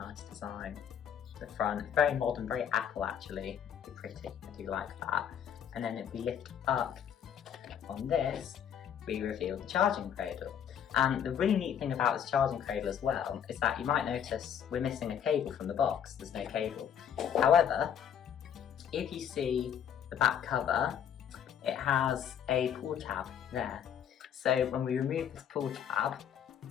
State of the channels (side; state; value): right; quieter; 8.8 dB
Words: design. The front, very modern, very Apple actually, very pretty, I do like that. And then if we lift up on this, we reveal the charging cradle. And the really neat thing about this charging cradle as well is that you might notice we're missing a cable from the box, there's no cable. However, if you see the back cover, it has a pull tab there. So when we remove this pull tab,